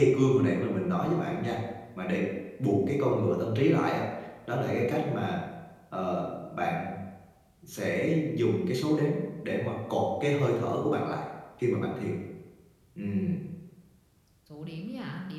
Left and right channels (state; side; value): identical; both; correlation 1.00